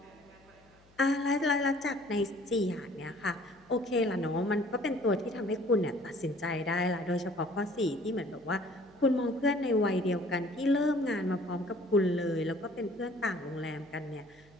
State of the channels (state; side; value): noise; left; hum, 30 dB below the sound